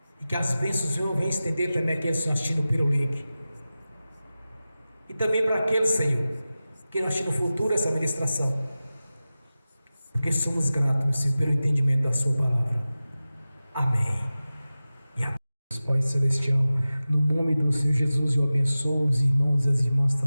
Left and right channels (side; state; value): both; inverted; correlation -0.95